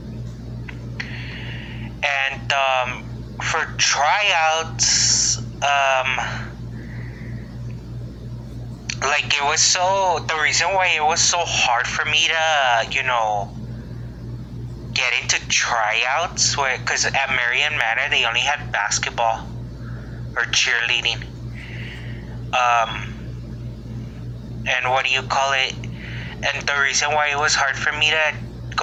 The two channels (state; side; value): identical; both; correlation 1.00